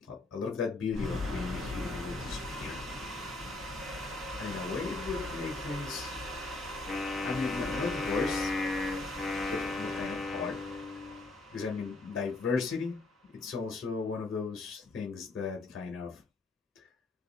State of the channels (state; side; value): quieter; right; 3.2 dB